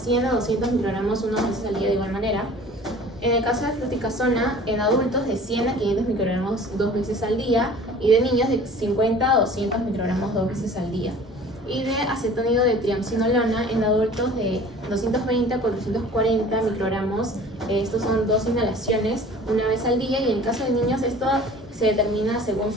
100 a 200 microgramos 1 o 2 veces al día de igual manera. En el caso de fluticasona, en adultos de 100 a 500 microgramos 2 veces al día, y de niños de 50 a 200 microgramos 2 veces al día. Y de acetónido de triamcinolona en adultos de 220 a 440 microgramos, estos son 2 inhalaciones 1 vez al día, y en el caso de niños esto se determina según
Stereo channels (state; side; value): normal; both; correlation 0.46